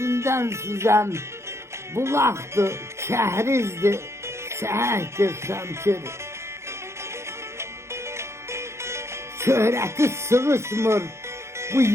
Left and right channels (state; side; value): late; left; 0.13 ms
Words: süzən, bulaqdır, kəhrizdir, səhəkdir Şəmkir. Şöhrəti sığışmır bu